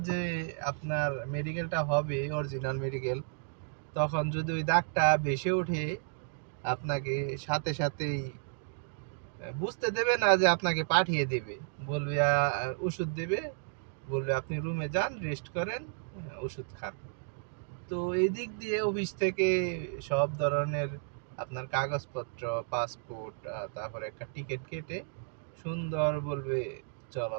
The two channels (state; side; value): silent; left; digital silence